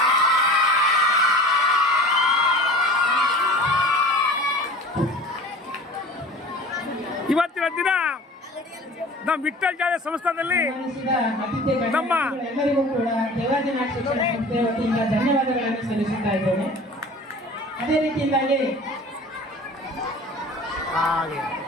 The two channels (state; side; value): normal; both; correlation 0.42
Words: ಇವತ್ತಿನ ದಿನ ನಮ್ಮ ವಿಠ್ಠಲ್ ಜಾತ್ರೆ ಸಂಸ್ಥಾನದಲ್ಲಿ ನಮ್ಮ ಎಲ್ಲರಿಗೂ ಕೂಡ ದೇವಾದಿನಾಥ ಶಿಕ್ಷಣ ಸಂಸ್ಥೆ ವತಿಯಿಂದ ಧನ್ಯವಾದಗಳನ್ನು ಸಲ್ಲಿಸುತ್ತಾ ಇದ್ದೇನೆ. ಅದೇ ರೀತಿಯಿಂದಾಗಿ